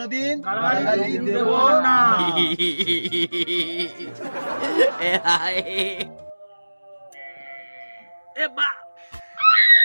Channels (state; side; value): inverted; both; correlation -1.00